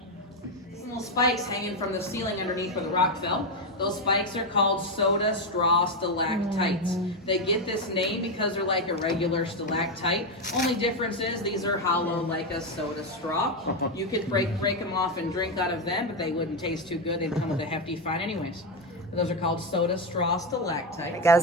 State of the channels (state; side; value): normal; both; correlation 0.08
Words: Some little spikes hanging from the ceiling underneath where the rock fell. Those spikes are called soda straw stalactites. They get this name because they're like a regular stalactite. Only difference is these are hollow like a soda straw. You could break them off and drink out of them, but they wouldn't taste too good. They'd come with a hefty fine anyways. But those are called soda straw stalactites.